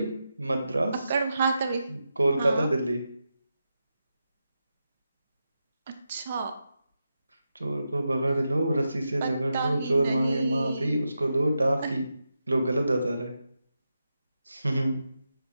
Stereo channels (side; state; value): both; inverted; correlation -0.88